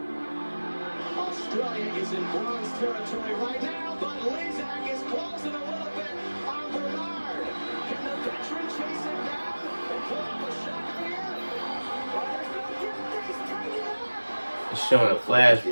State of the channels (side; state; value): both; inverted; correlation -1.00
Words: Australia is in bronze territory right now, but Ledecky is closing a little bit on Bernard. Can the veteran chase him down and pull off a shot here? Oh, there's no getting things tightened up. It's showing a